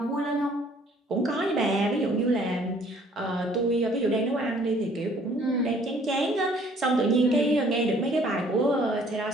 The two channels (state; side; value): normal; both; correlation 0.58